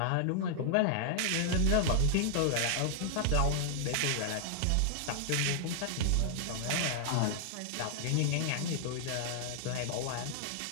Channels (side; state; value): both; different; correlation 0.00